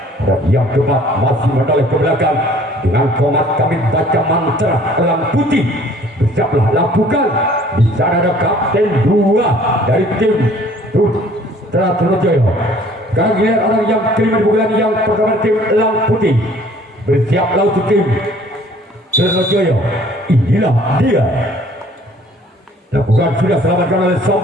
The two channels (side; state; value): both; normal; correlation 0.55